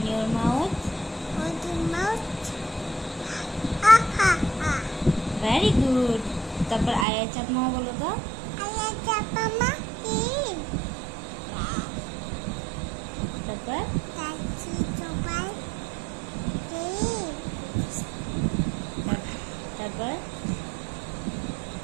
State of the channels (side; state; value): left; drops out; at 7.1 s